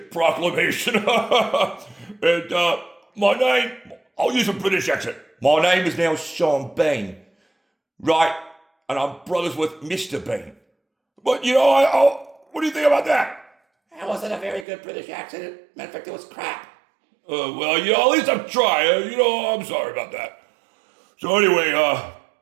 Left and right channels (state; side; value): drops out; left; at 14.7 s